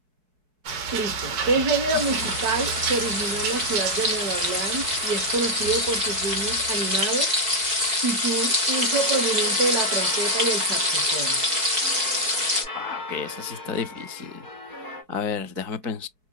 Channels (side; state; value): left; late; 4.6 ms